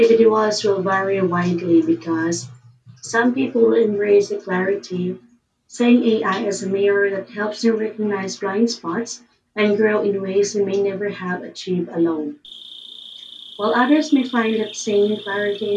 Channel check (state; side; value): identical; both; correlation 1.00